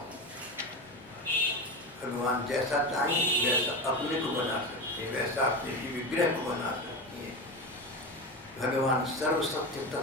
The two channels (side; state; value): both; normal; correlation 0.22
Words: भगवान जैसा चाहे वैसा अपने को बना सकते हैं, वैसा अपने ही विग्रह को बना सकते हैं। भगवान सर्वसत्य